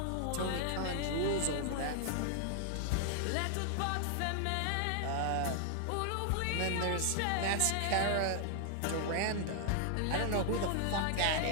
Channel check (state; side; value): different; both; correlation 0.00